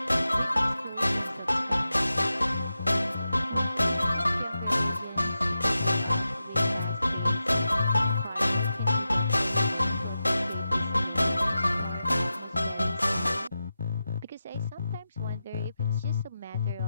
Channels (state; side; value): inverted; both; correlation -0.91